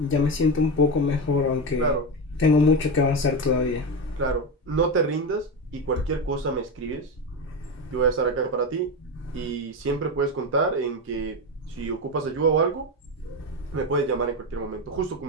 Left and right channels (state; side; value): normal; both; correlation 0.16